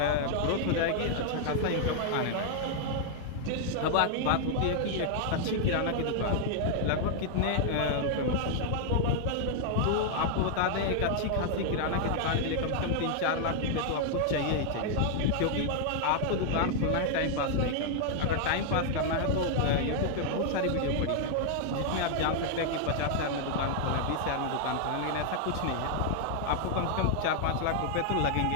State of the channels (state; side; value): different; both; correlation 0.00